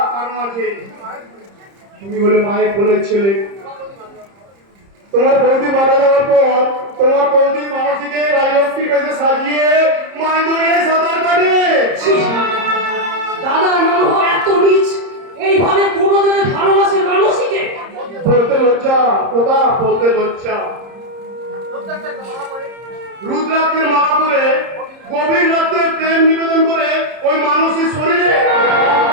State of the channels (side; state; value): left; late; 30 ms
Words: কারণ আছে। তুমি বলে মায়ের কোলের ছেলে, তোমার বৌদি মারা যাওয়ার পর তোমার বৌদি মানসীকে রাজলক্ষ্মীর কাছে সাজিয়ে মায়ের দড়িয়ে সাঁতার কাটে। দাদার মনোহ এত নিচ, এইভাবে কোনোদিনে ভালোবাসে মানুষকে? বলতে লজ্জা, কথা বলতে লজ্জা। রুদ্রাক্ষের মালা পরে গভীর রাতে প্রেম নিবেদন করে ওই মানুষের শরীরে।